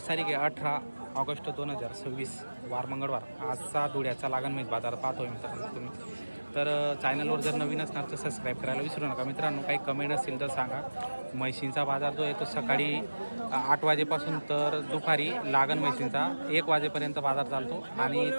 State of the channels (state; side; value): inverted; both; correlation -1.00